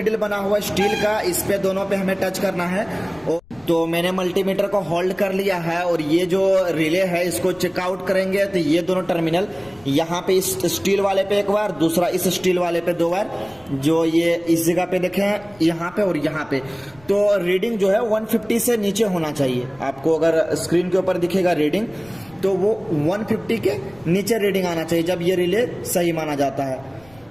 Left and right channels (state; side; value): noise; left; rumble, 27 dB below the sound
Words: बना हुआ है स्टील का, इस पे दोनों पे हमें टच करना है। और तो मैंने मल्टीमीटर को होल्ड कर लिया है और ये जो रिले है इसको चेकआउट करेंगे। तो ये दोनों टर्मिनल, यहाँ पे इस स्टील वाले पे एक बार, दूसरा इस स्टील वाले पे 2 बार, जो ये इस जगह पे देखें यहाँ पे और यहाँ पे। तो रीडिंग जो है 150 से नीचे होना चाहिए। आपको अगर स्क्रीन के ऊपर दिखेगा रीडिंग तो वो 150 के नीचे रीडिंग आना चाहिए जब ये रिले सही माना जाता है।